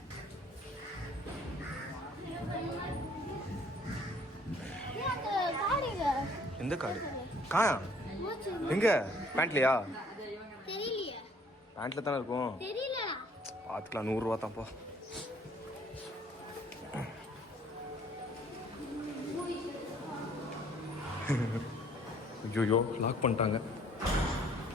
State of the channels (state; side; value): normal; both; correlation 0.59